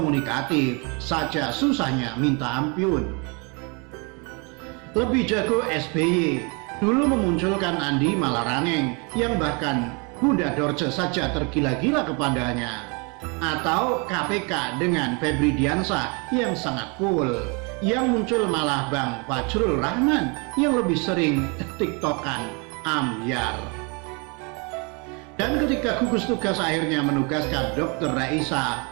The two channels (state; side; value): quieter; left; 32.0 dB